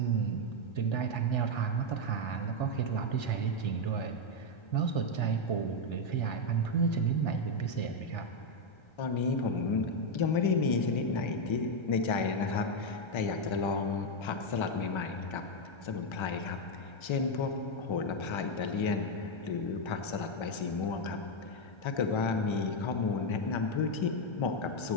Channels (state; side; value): late; right; 1.3 ms